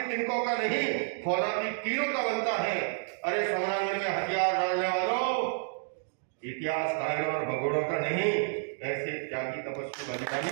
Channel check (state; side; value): silent; left; digital silence